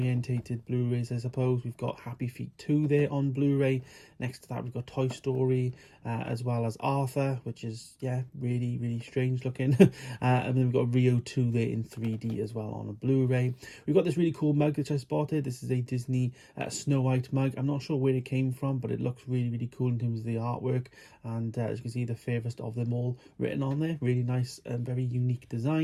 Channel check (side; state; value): both; identical; correlation 1.00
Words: Blu-rays, I suppose. We've got Happy Feet 2 there on Blu-ray. Next to that we've got Toy Story, as well as Arthur, which is, yeah, really, really strange looking. And then we've got Rio 2 there in 3D as well on a Blu-ray. We've got this really cool mug which I spotted. This is a Disney Snow White mug. I'm not sure where it came from, but it looks really, really cool in terms of the artwork. And as you can see, the fairest of them all written on there. Really nice and very unique